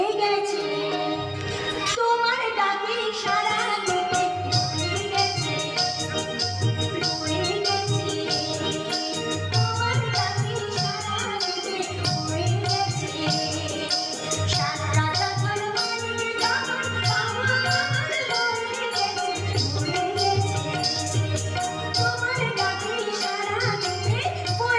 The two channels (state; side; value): identical; both; correlation 1.00